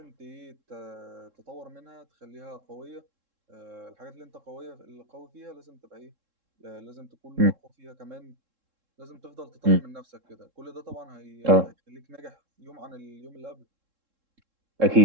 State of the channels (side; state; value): left; late; 3.7 ms